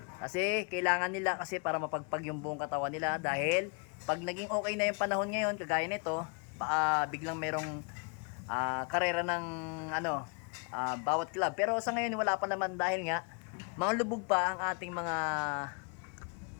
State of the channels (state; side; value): quieter; right; 37.1 dB